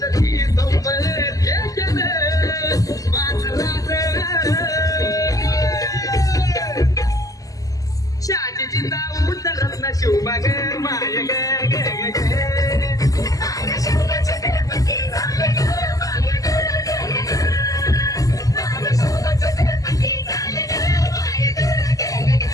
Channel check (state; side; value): late; right; 0.17 ms